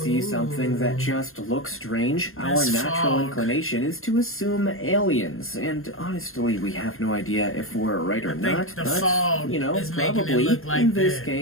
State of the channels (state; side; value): late; right; 0.61 ms